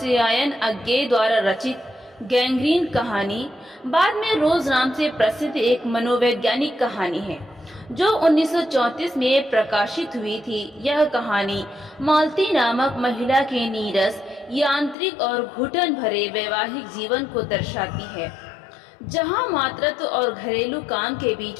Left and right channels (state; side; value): drops out; right; at 15.0 s